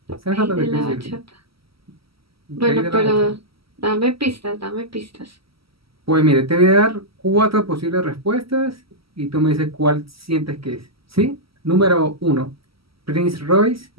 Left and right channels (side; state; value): left; late; 0.75 ms